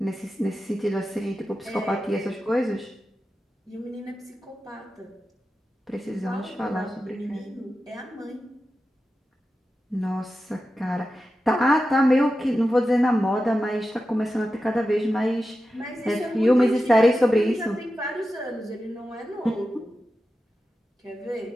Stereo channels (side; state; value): both; normal; correlation 0.92